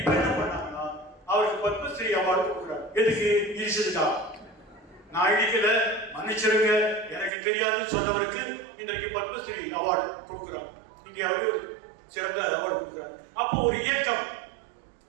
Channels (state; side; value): drops out; left; at 7.3 s